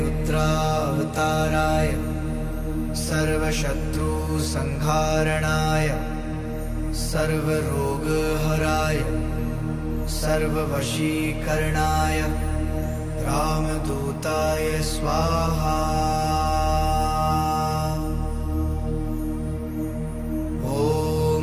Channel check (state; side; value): identical; both; correlation 1.00